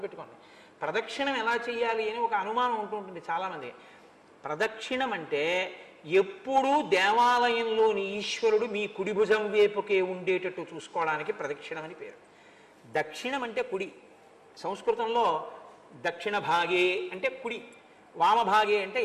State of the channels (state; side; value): identical; both; correlation 1.00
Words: ప్రదక్షిణం ఎలా చేయాలి అని ఒక అనుమానం ఉంటుంటుంది చాలామంది. ప్రదక్షిణం అంటే ఎప్పుడూ దేవాలయంలోని ఈశ్వరుడు మీ కుడి భుజం వైపుకే ఉండేటట్టు చూసుకోవడానికి ప్రదక్షిణం అని పేరు. దక్షిణం అంటే కుడి. సంస్కృతంలో దక్షిణ భాగే అంటే కుడి, వామభాగే అంటే